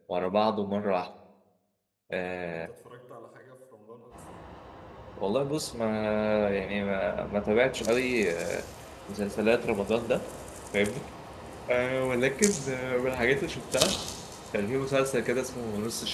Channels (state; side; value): identical; both; correlation 1.00